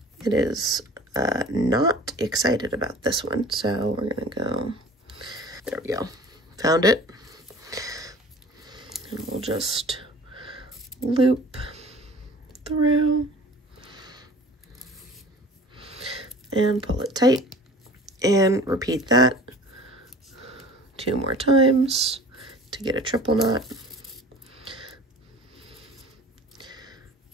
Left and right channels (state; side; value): normal; both; correlation 0.44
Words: It is not excited about this one, so we're gonna go, there we go, found it. And we'll just loop through and pull it tight and repeat that 2 more times to get a triple knot.